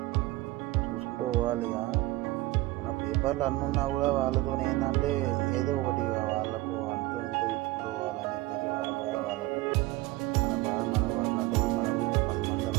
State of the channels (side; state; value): left; quieter; 19.3 dB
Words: చూసుకుంటూ పోవాలి. ఇక మన పేపర్లు అన్నీ ఉన్నా కూడా వాళ్ళతో ఏంటంటే ఏదో ఒకటి వాళ్ళకు అంతో ఇంతో ఇచ్చుకుంటూ పోవాలని చెప్పేసి వాళ్ళ బాధ వాళ్ళకు, మన బాధ మనకు. అట్లాంటి వాళ్ళు మనకు 10 మంది